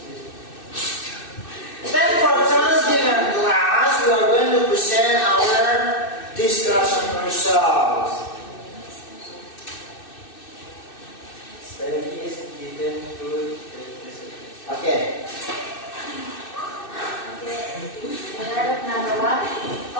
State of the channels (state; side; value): late; right; 2.6 ms